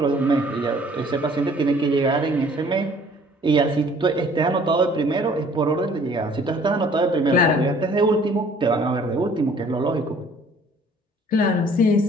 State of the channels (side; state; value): both; normal; correlation 0.55